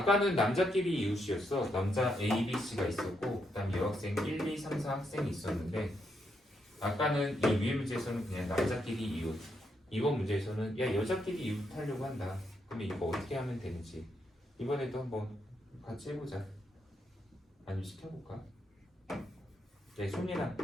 남자끼리 이웃이었어. 남자 A, B, C가 있었고 그 다음 여학생 1, 2, 3, 4 학생이 있었는데 아까는 이 위의 문제에서는 그냥 남자끼리 이웃. 이번 문제에서는 야 여자끼리 이웃 하려고 한다. 그러면 이거 어떻게 하면 되는지 이번에도 한번 같이 해보자. 아니면 시켜볼까? 네, 손이나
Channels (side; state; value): both; normal; correlation 0.79